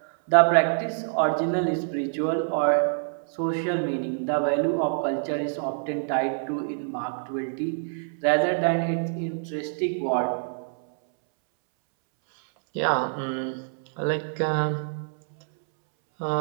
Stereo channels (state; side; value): silent; left; 61 dB below the other